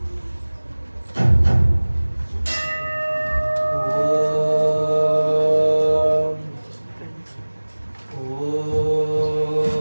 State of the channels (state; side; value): inverted; both; correlation -1.00